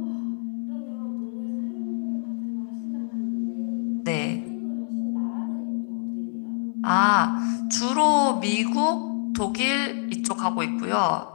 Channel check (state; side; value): silent; right; 61 dB below the other